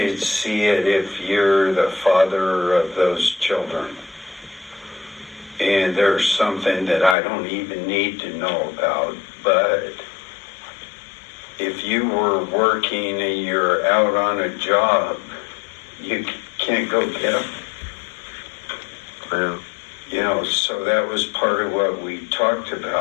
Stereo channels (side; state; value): right; drops out; at 7.2 s